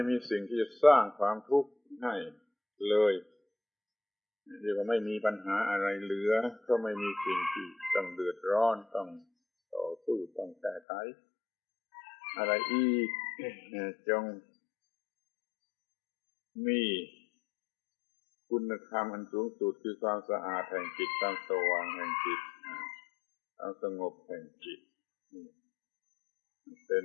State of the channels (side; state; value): right; drops out; at 10.8 s